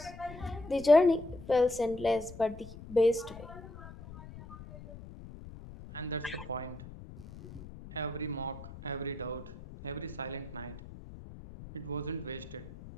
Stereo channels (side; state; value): left; noise; rumble, 15 dB below the sound